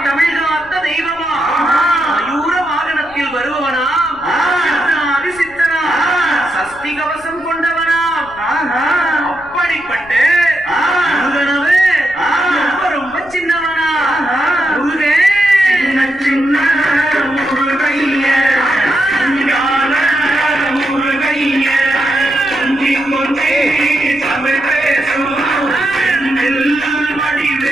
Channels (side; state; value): left; noise; rumble, 24 dB below the sound